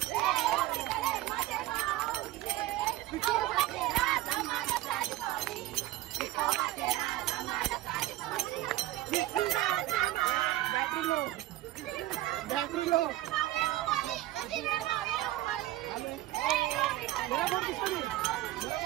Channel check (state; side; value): quieter; left; 15.9 dB